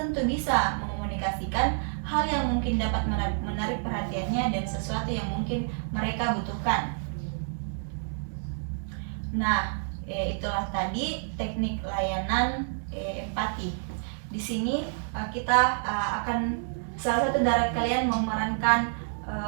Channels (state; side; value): silent; left; digital silence